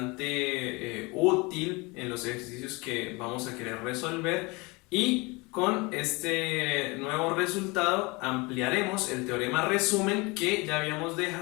útil en los ejercicios que vamos a querer resolver, y con este nuevo resultado ampliaremos el teorema resumen que ya habíamos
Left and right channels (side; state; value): right; quieter; 26.1 dB